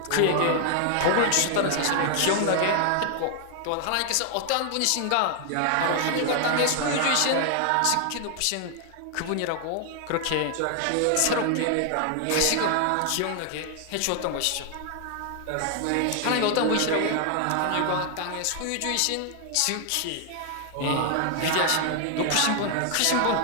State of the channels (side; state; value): both; different; correlation 0.00